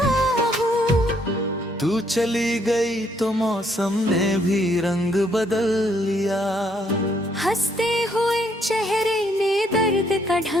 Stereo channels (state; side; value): normal; both; correlation 0.70